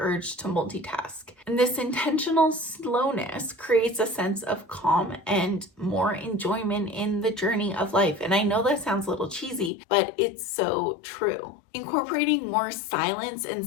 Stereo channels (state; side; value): drops out; right; at 9.7 s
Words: to multitask. And this intentional slowness creates a sense of calm and more enjoyment in the journey of life. And I know that sounds a little cheesy, but it's so true. Incorporating more silence and